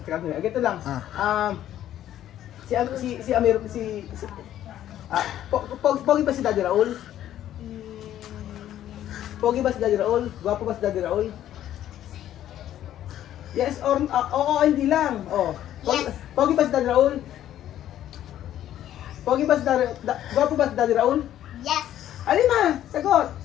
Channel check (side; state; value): right; quieter; 11.9 dB